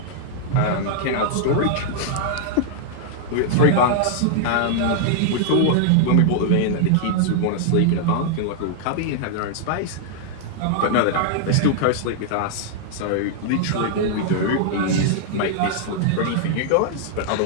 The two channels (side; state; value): both; different; correlation -0.01